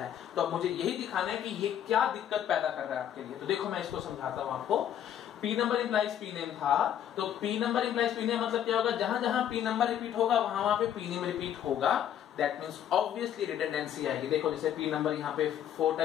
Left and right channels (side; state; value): right; quieter; 10.1 dB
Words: तो अब मुझे यही दिखाना है कि ये क्या दिक्कत पैदा कर रहा है आपके लिए। तो देखो मैं इसको समझाता हूं आपको। P number implies P name था, तो P number implies P name मतलब क्या होगा, जहां जहां पी नंबर रिपीट होगा वहां पे पी नेम रिपीट होगा। दैट मींस ऑब्वियसली रिडंडेंसी आएगी। देखो जैसे पी नंबर यहाँ पे 4